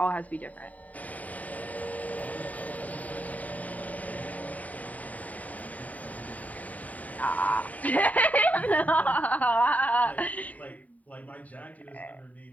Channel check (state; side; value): late; right; 0.072 ms